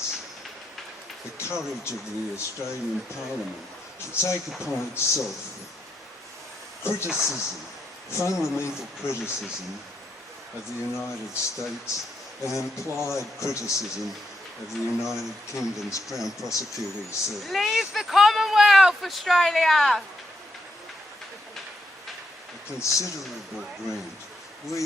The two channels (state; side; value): normal; both; correlation 0.80